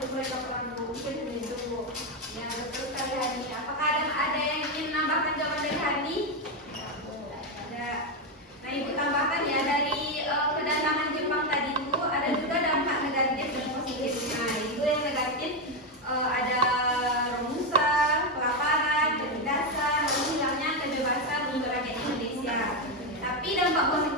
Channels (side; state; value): both; normal; correlation 0.07